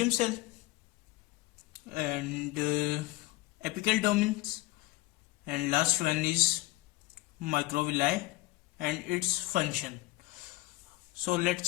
cell and apical domains and last one is microvilli and its function. So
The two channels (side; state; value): right; quieter; 19.0 dB